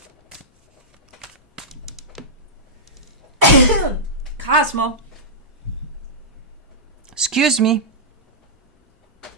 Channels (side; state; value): both; normal; correlation -0.13